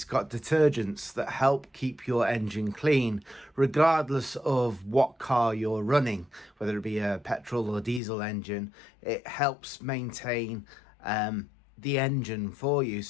got detergents that help keep your engine clean regardless of what car you're running, whether it be a petrol or diesel engine. It helps maintain the engine for you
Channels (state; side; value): drops out; right; at 8.0 s